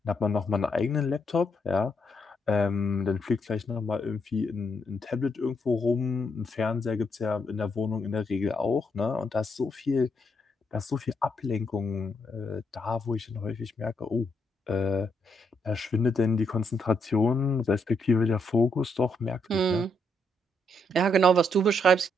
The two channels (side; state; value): both; normal; correlation 0.77